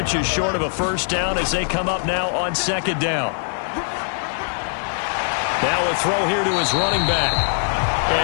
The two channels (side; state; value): right; silent; 55 dB below the other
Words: short of a first down as they come up now on second down. Now a throw here to his running back.